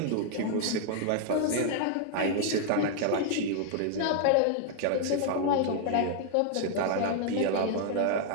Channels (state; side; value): different; both; correlation 0.00